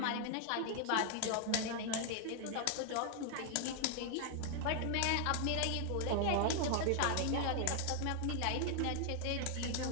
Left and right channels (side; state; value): both; different; correlation 0.00